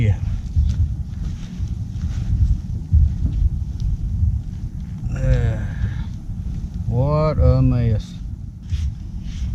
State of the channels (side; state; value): both; identical; correlation 1.00